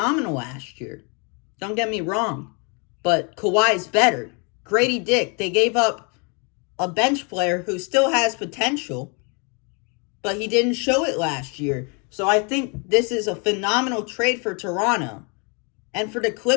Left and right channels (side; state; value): right; quieter; 34.5 dB